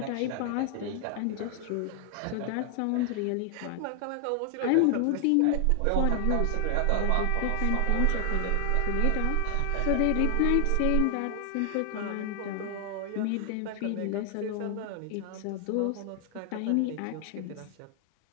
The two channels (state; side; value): different; both; correlation 0.00